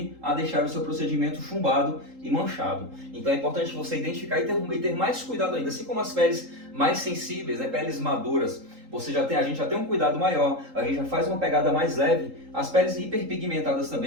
a deixar o seu procedimento chumbado e manchado. Então é importante você identificar e ter mais cuidado ainda, assim como as peles mais sensíveis, né, peles maduras, a gente já tem um cuidado maior, a gente já faz uma pegada mais leve. As peles hiperpigmentadas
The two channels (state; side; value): late; left; 3.8 ms